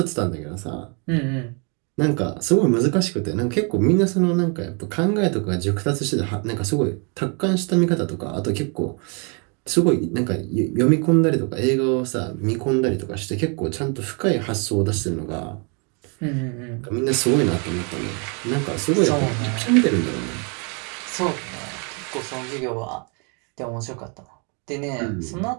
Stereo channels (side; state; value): left; quieter; 35.9 dB